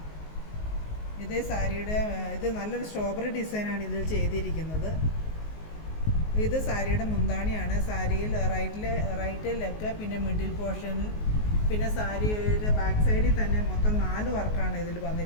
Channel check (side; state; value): right; late; 19 ms